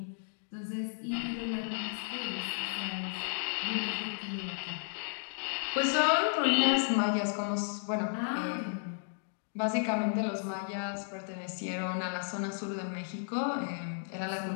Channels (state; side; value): silent; right; digital silence